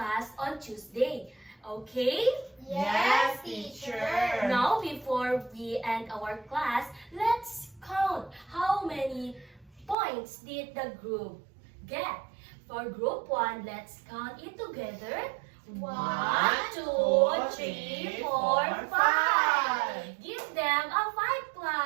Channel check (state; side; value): drops out; left; at 10.0 s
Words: on Tuesday. Okay? Yes, teacher. Now, before we end our class, let's count how many points did the group get. For group 1, let's count it together. 1, 2, 3, 4, 5. Give them a 5